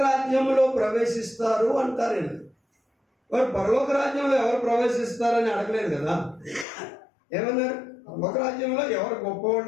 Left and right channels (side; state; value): right; drops out; at 6.7 s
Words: రాజ్యంలో ప్రవేశిస్తారు అంటారు. వారు పరలోక రాజ్యంలో ఎవరు ప్రవేశిస్తారని అడగలేదు కదా. ఏమన్నారు? పరలోక రాజ్యంలో ఎవరు